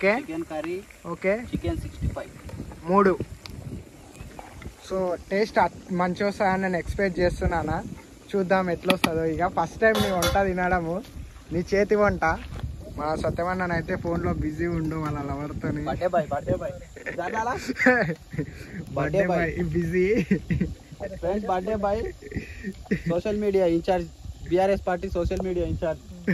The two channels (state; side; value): identical; both; correlation 1.00